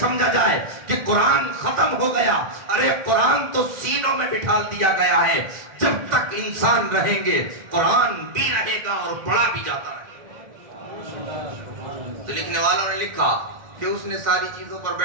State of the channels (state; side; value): late; left; 1.9 ms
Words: سمجھا جائے کہ قرآن ختم ہو گیا، ارے قرآن تو سینوں میں بٹھا دیا گیا ہے، جب تک انسان رہیں گے قرآن بھی رہے گا اور پڑھا بھی جاتا رہے گا۔ تو لکھنے والوں نے لکھا کہ اس نے ساری چیزوں پر